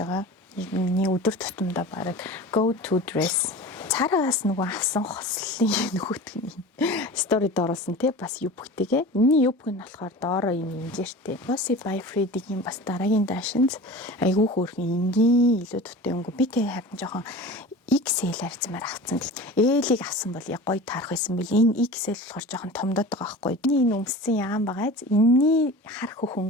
байгаа. Миний өдөр тутамдаа баг go to dress. Цаарагаас нөгөө авсан хослолын нөгөөтгний сторид оруулсан тий бас юбгтэйгээ. Энэний юбг нь болохоор доороо юм инжиртэй. Flossy by Freddy-гийн бас дараагийн даашинз айгүй хөөрхөн энгийн илүү туттай өнгө. Би тэг харин жоохон XL арцмаар авсан. L-ийг авсан бол яг гоё таарах байсан бил. Энэ XL болохоор жоохон томдоод байгаа байхгүй. Энэ өмссөн яам байгааз энэний хар хөх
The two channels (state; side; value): normal; both; correlation 0.36